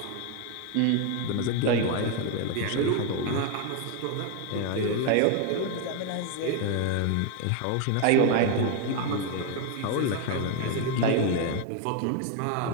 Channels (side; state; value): both; different; correlation 0.01